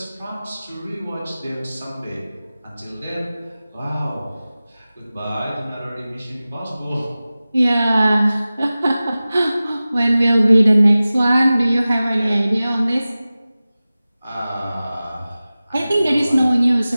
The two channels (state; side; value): inverted; both; correlation -0.96